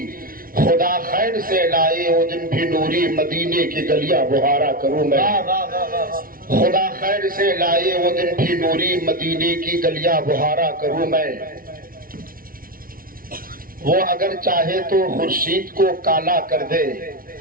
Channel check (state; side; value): late; left; 0.42 ms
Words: خدا خیر سے لائے وہ دن بھی نوری، مدینے کی گلیاں بہارا کروں میں۔ خدا خیر سے لائے وہ دن بھی نوری، مدینے کی گلیاں بہارا کروں میں۔ وہ اگر چاہے تو خورشید کو کالا کر دے،